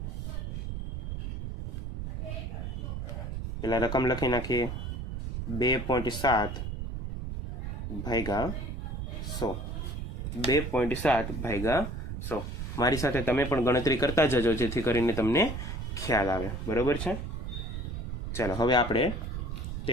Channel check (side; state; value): right; noise; rumble, 5 dB below the sound